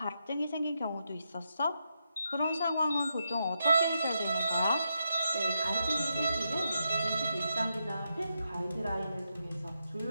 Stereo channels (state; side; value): inverted; both; correlation -0.84